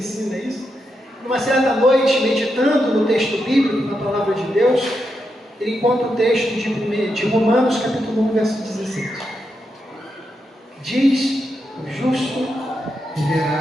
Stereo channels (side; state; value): both; normal; correlation 0.84